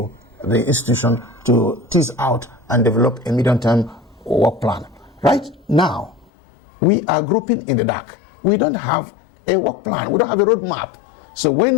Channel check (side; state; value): right; drops out; at 6.2 s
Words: the institution to tease out and develop a medium-term work plan. Right now, we are groping in the dark. We don't have a work plan. We don't have a roadmap. So